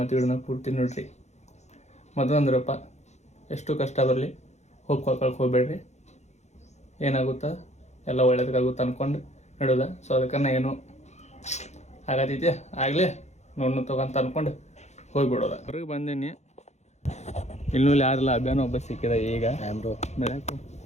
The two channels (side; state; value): right; late; 0.33 ms